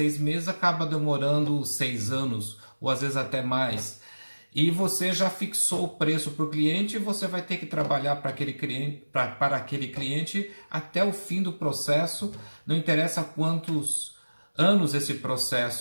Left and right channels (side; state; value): both; inverted; correlation -1.00